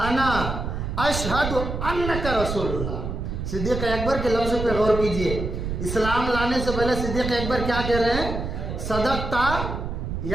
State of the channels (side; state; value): right; noise; rumble, 4 dB below the sound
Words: اشہد انک رسول اللہ۔ صدیق اکبر کے لفظ پہ غور کیجئے، اسلام لانے سے پہلے صدیق اکبر کیا کہہ رہے ہیں؟ صدقتا